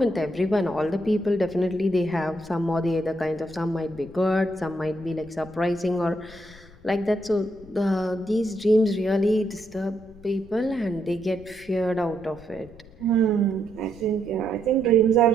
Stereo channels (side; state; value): left; noise; rumble, 22 dB below the sound